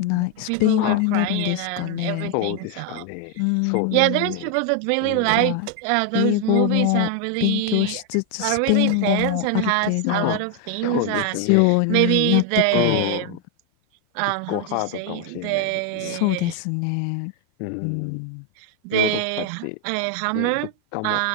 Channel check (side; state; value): both; different; correlation 0.00